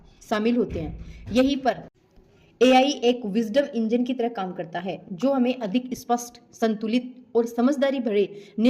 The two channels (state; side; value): identical; both; correlation 1.00